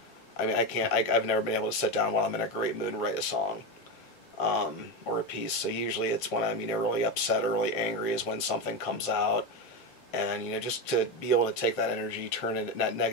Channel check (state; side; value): normal; both; correlation 0.15